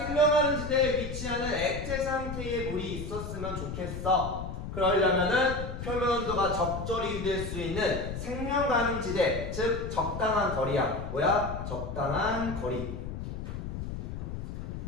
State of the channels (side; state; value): left; noise; rumble, 7 dB below the sound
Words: 지대에 위치하는 액체 상태의 물이 있었으면 좋겠어. 그러려면은 표면 온도가 적절히 유지될 수 있는 생명 가능 지대, 즉 적당한 거리야. 뭐야? 적당한 거리.